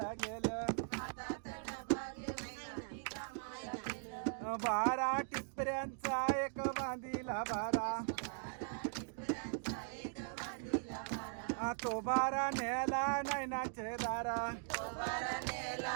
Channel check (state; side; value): silent; left; digital silence